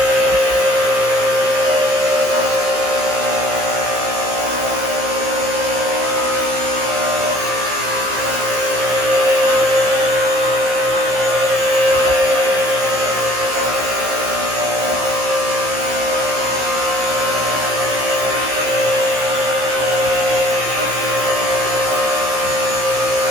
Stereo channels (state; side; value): late; left; 15 ms